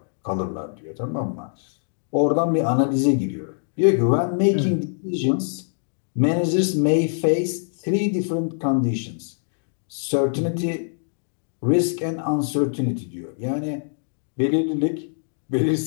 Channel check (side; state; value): right; silent; digital silence